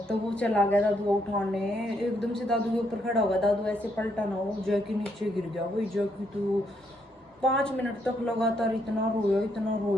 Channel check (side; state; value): both; normal; correlation 0.75